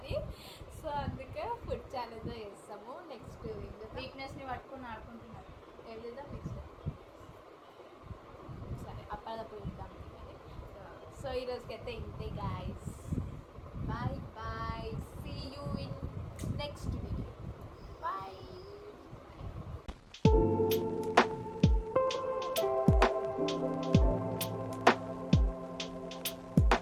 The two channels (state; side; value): identical; both; correlation 1.00